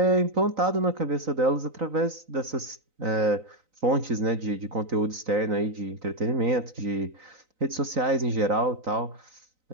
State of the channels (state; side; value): late; left; 3.9 ms